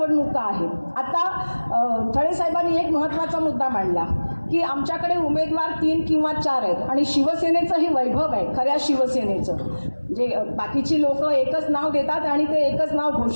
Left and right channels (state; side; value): inverted; both; correlation -1.00